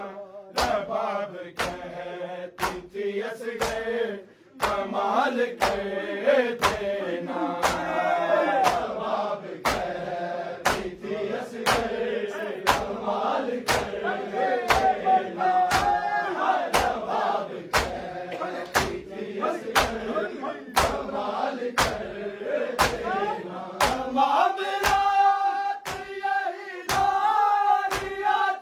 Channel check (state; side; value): identical; both; correlation 1.00